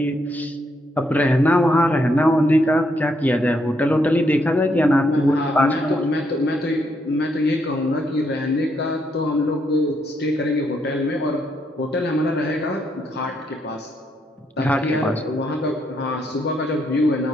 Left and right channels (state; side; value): normal; both; correlation 0.76